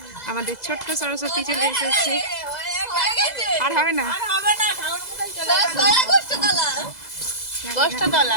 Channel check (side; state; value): right; late; 2.0 ms